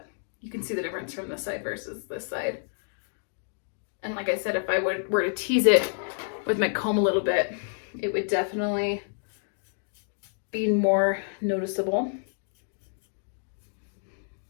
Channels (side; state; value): right; silent; digital silence